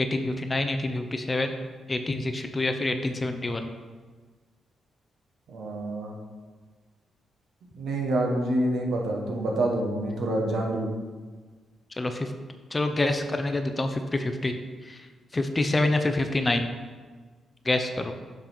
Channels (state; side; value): normal; both; correlation 0.87